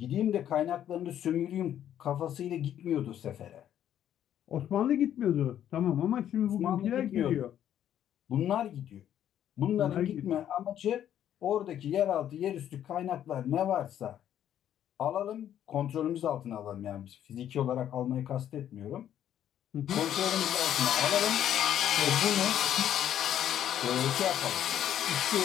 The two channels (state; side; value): quieter; right; 10.6 dB